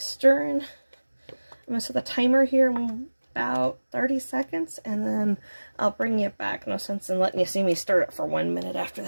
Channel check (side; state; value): both; inverted; correlation -1.00